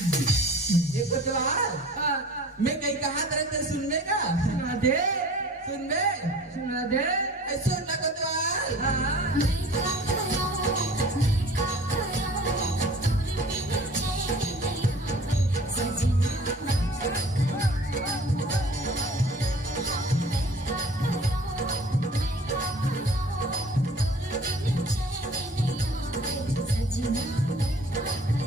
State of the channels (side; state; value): both; normal; correlation 0.46